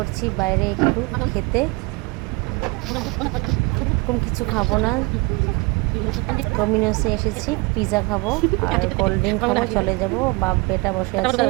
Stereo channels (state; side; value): quieter; left; 26.9 dB